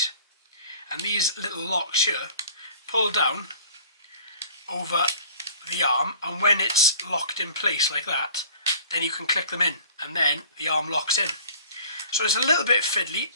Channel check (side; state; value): both; inverted; correlation -0.47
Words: And these little locks here pull down over the arm, and when it's locked in place like that, then you can click them in, and then the arm locks in. So it's a little bit fiddly